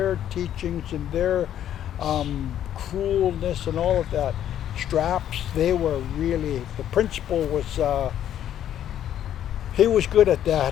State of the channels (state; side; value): quieter; right; 10.8 dB